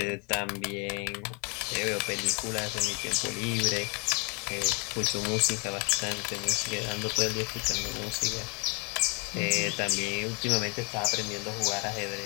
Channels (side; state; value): right; quieter; 33.1 dB